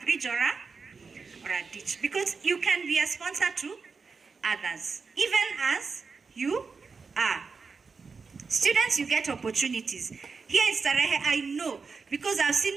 bridge or a ditch. Because you can be a sponsor to others, even as you are. Students, you get opportunities. Here in Starehe, I know, because I've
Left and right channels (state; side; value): quieter; left; 4.9 dB